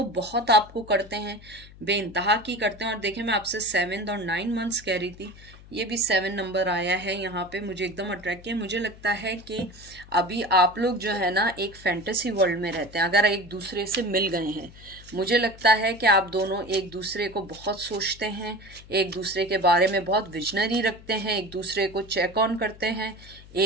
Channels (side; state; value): left; noise; hum, 20 dB below the sound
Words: बहुत आपको करते हैं, बेइंतहा की करते हैं। और देखें, मैं आपसे 7 और 9 मंथ्स कह रही थी, ये भी 7 नंबर आया है यहाँ पे, मुझे एकदम अट्रैक्ट किया। मुझे लगता है कि अभी आप लोग जो है ना एक फैंटेसी वर्ल्ड में रहते हैं, अगर एक दूसरे से मिल गए हैं। मुझे लगता है कि आप दोनों एक दूसरे को बहुत सोचते हैं, एक दूसरे के बारे में बहुत विजनरी रखते हैं, एक दूसरे को चेक ऑन करते हैं,